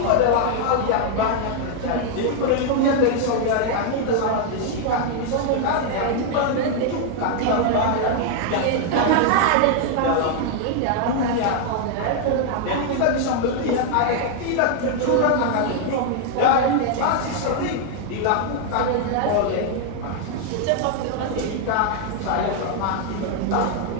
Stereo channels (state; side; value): different; both; correlation 0.00